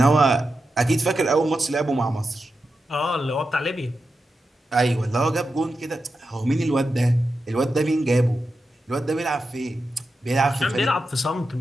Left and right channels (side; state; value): both; normal; correlation 0.89